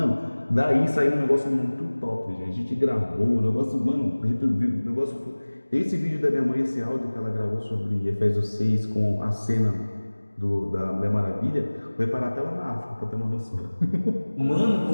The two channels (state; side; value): inverted; both; correlation -1.00